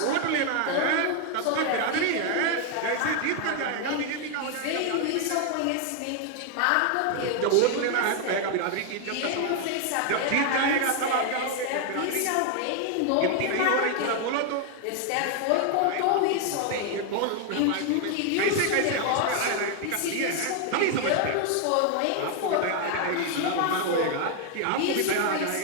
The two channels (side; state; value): both; different; correlation 0.00